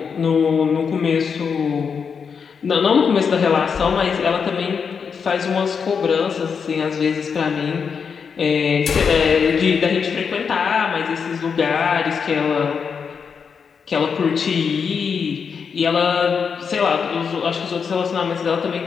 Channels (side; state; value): right; quieter; 6.2 dB